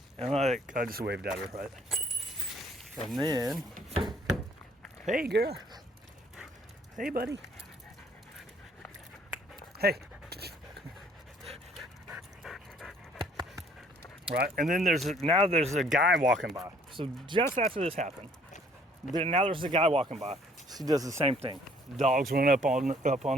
And I just waved at her, right? And then, hey girl. Hey buddy. Hey. Right, and then there's a guy walking by. So just after this happened, now there's a guy walking by. She does the same thing. Dogs run up on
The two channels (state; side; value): normal; both; correlation 0.60